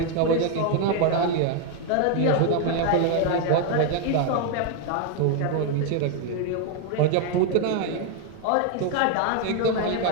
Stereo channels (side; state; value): both; different; correlation 0.01